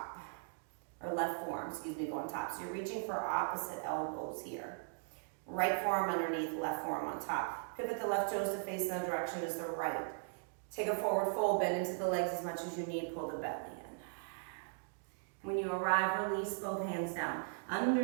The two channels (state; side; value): silent; left; digital silence